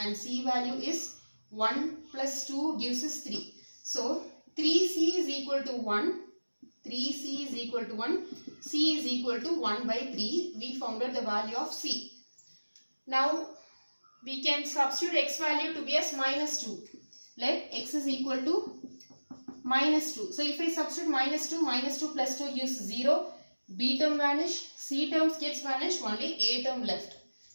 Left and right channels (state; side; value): inverted; both; correlation -1.00